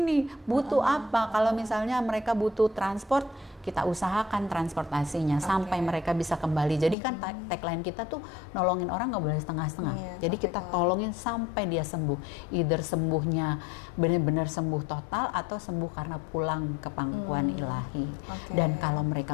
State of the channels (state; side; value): drops out; right; at 7.0 s